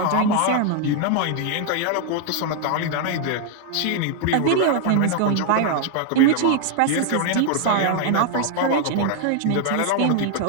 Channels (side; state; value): both; different; correlation 0.00